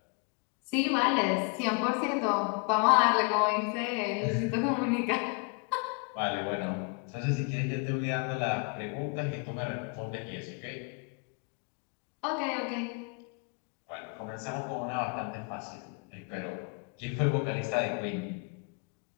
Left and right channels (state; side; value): quieter; right; 33.7 dB